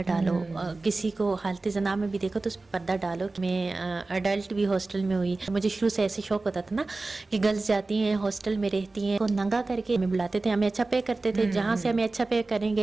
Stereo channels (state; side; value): quieter; left; 3.4 dB